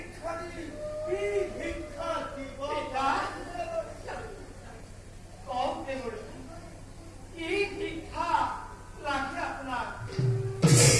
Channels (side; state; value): both; identical; correlation 1.00